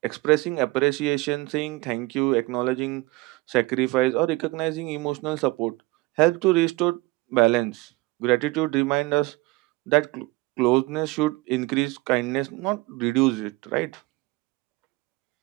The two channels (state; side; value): quieter; left; 22.4 dB